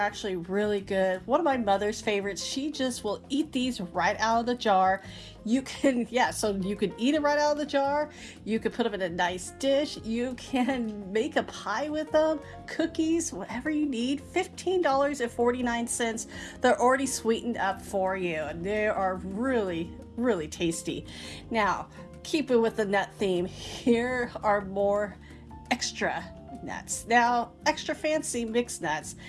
really good. One of my mother's favorites. She just will eat these right out of the jar. You can, yeah, so you can eat it right out of the jar. You can put them in a nice dish. You can make a pie with them, cookies, whatever you need. $15.49. They're already sweetened up for you, and they are really, really tasty. Now, keep it with the nut theme. Here are more extra nuts. Now, extra fancy mixed nuts.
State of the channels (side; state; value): both; identical; correlation 1.00